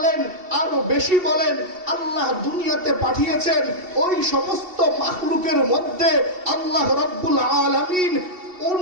আরো বেশি বলেন, আল্লাহ দুনিয়াতে পাঠিয়েছেন। ওই সমস্ত মাখলুকের মধ্যে আল্লাহ রাব্বুল আলামিন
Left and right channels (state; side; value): late; left; 2.7 ms